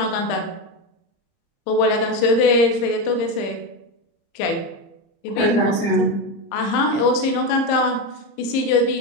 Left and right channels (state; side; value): late; right; 30 ms